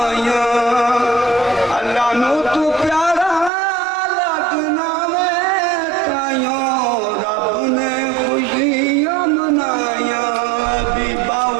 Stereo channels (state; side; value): drops out; left; at 3.5 s